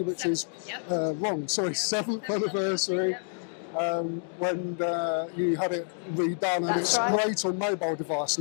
which is wrong, sorry, 7th anniversary. when you had it redone, and it's great on mobile device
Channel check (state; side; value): silent; right; 59 dB below the other